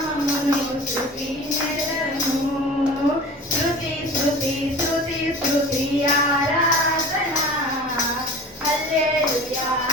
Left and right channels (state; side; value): normal; both; correlation 0.39